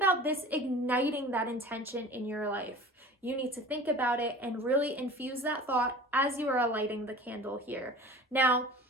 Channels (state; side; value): normal; both; correlation 0.40